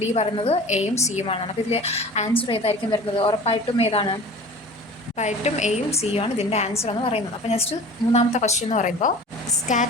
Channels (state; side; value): normal; both; correlation 0.40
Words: ഡി പറയുന്നത് എയും സിയുമാണ്. അപ്പോൾ ഇതിൽ ആൻസർ ഏതായിരിക്കും വരുന്നത്, ഉറപ്പായിട്ടും എയും സിയും ആണ് ഇതിൻ്റെ ആൻസർ എന്ന് പറയുന്നത്. അപ്പോൾ നെക്സ്റ്റ് മൂന്നാമത്തെ ക്വസ്റ്റ്യൻ എന്ന് പറയുമ്പോൾ,